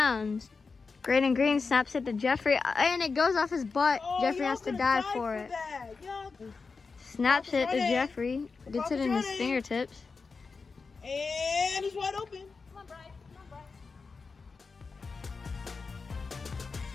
Graydon Green snaps it to Jeffrey and it goes off his butt. Jeffrey has to dive for it. Snaps it to Jeffrey. Gets it in his fingertips. And he's wide open.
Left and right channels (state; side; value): quieter; right; 4.6 dB